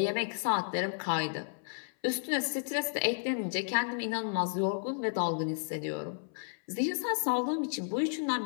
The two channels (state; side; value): silent; right; 56 dB below the other